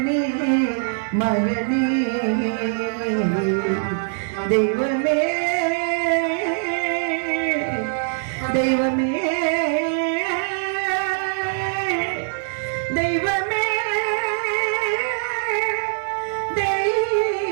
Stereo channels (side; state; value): left; silent; 64 dB below the other